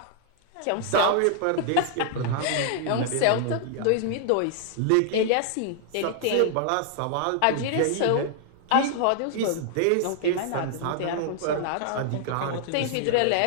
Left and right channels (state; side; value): different; both; correlation 0.00